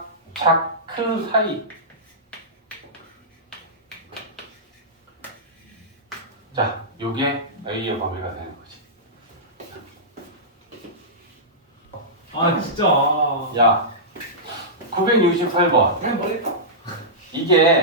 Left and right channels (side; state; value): both; normal; correlation -0.15